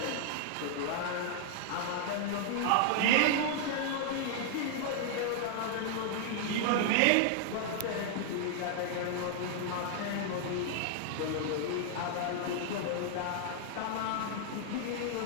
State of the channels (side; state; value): both; different; correlation 0.00